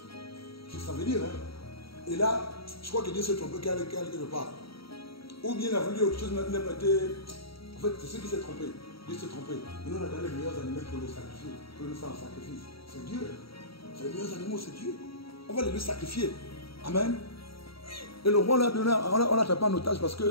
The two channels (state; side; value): late; right; 0.75 ms